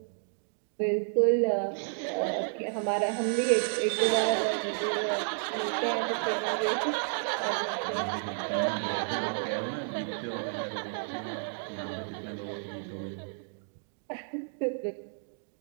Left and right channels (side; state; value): left; silent; digital silence